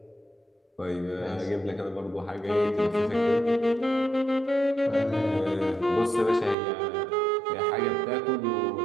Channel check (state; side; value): drops out; left; at 6.6 s